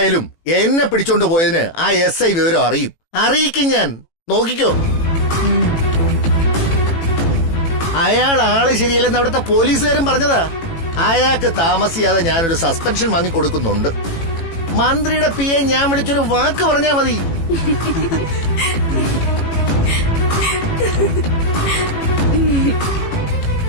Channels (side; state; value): right; late; 18 ms